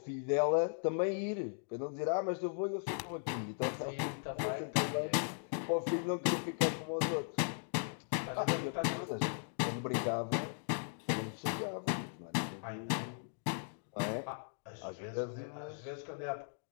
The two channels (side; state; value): right; silent; digital silence